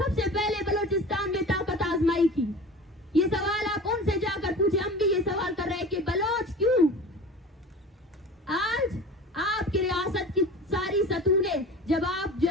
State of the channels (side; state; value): both; normal; correlation 0.37